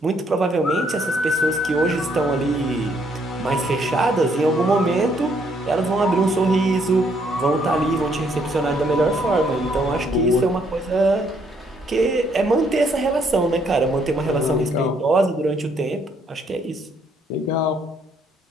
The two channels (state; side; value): normal; both; correlation 0.69